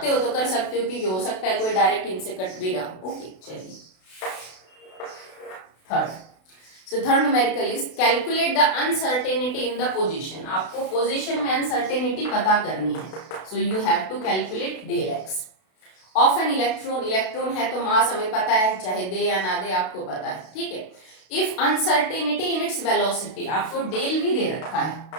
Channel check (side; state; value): right; late; 32 ms